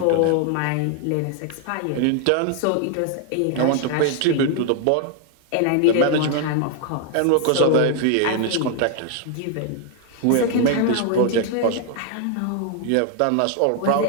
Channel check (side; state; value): both; different; correlation 0.00